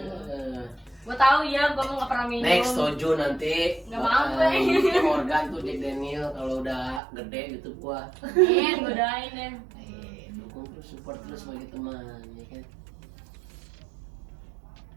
Gue tahu ya, gue mau nggak pernah minum. Next Tojo nanti. Nggak mau, gue. Organ tuh Jack Daniel kalau udah gede gitu gua. Godain deh. Dukung terus, support terus sebagai teman, ya kan.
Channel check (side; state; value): left; drops out; at 7.0 s